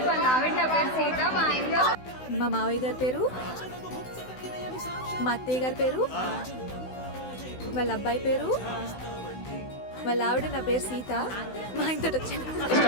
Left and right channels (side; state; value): right; late; 16 ms